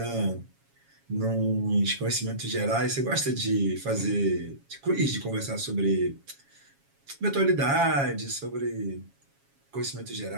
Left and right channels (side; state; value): left; late; 7.3 ms